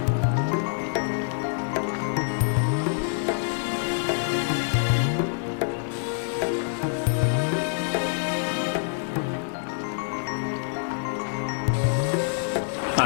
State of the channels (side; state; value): right; silent; digital silence